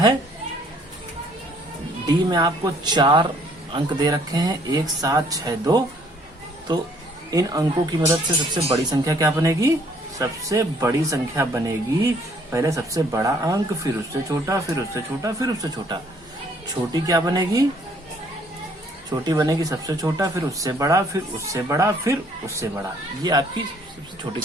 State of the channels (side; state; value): both; normal; correlation 0.62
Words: डी में आपको 4 अंक दे रखे हैं, 1 7 6 2। तो इन अंकों की मदद से सबसे बड़ी संख्या क्या बनेगी, सबसे बड़ी संख्या बनेगी पहले सबसे बड़ा अंक, फिर उससे छोटा, फिर उससे छोटा, फिर उससे छोटा। छोटी क्या बनेगी, छोटी बनेगी सबसे छोटा, फिर उससे बड़ा, फिर उससे बड़ा, फिर उससे बड़ा। ये आपकी सबसे छोटी